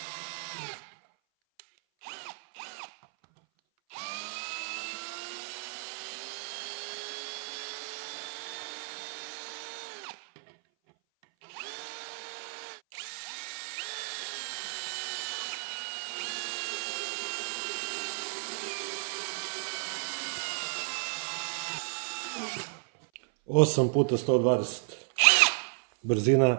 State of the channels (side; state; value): left; silent; 56 dB below the other